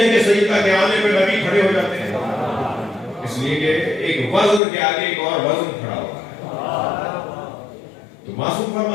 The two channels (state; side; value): drops out; right; at 4.6 s